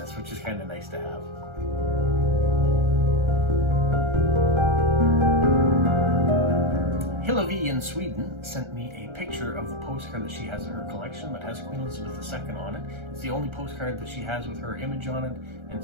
which is kind of nice to have. Hillevi in Sweden sent me a picture of the postcard that she has in her collection that has Queen Elizabeth II on it. It's the only postcard that she has with her image on it, and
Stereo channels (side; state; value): left; late; 1.3 ms